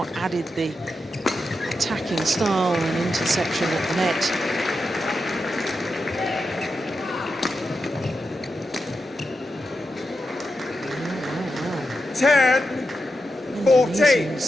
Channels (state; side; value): normal; both; correlation 0.88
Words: added the attacking style and interception at the net. Wow.